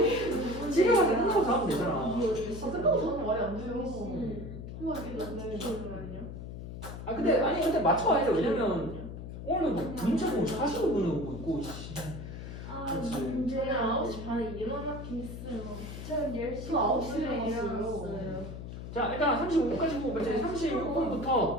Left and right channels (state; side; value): noise; left; hum, 9 dB below the sound